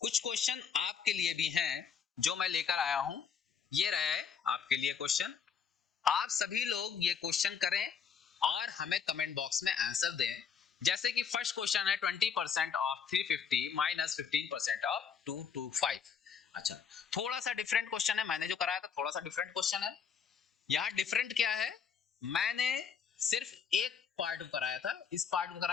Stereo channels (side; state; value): right; quieter; 6.9 dB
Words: कुछ क्वेश्चन आपके लिए भी हैं जो मैं लेकर आया हूं, ये रहे आपके लिए क्वेश्चन। आप सभी लोग ये क्वेश्चन करें और हमें कमेंट बॉक्स में आंसर दें। जैसे कि फर्स्ट क्वेश्चन है 20% ऑफ 350 माइनस 15% ऑफ 225। अच्छा, थोड़ा सा डिफरेंट क्वेश्चन है, मैंने जो कराया था थोड़ा सा डिफरेंट क्वेश्चन है। यहाँ डिफरेंट क्या है, मैंने सिर्फ एक पार्ट कराया था, इस पार्ट को